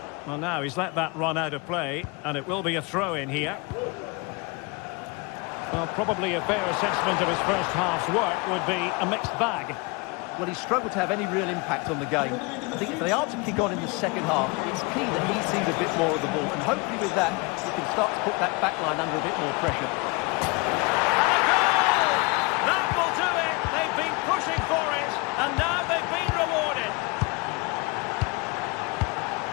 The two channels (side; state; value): right; quieter; 27.3 dB